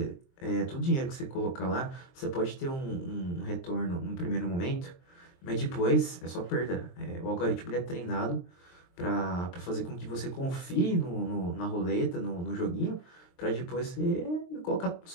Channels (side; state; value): right; late; 23 ms